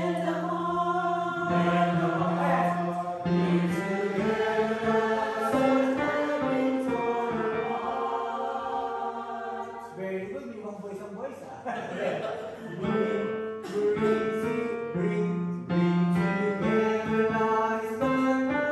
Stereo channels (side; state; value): both; identical; correlation 1.00